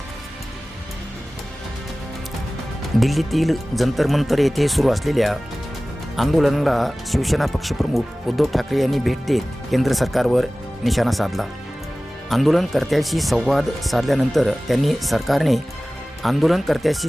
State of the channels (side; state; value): both; normal; correlation 0.98